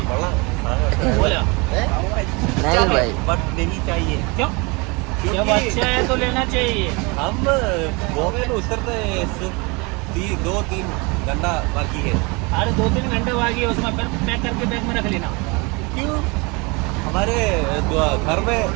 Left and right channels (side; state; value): left; quieter; 28.1 dB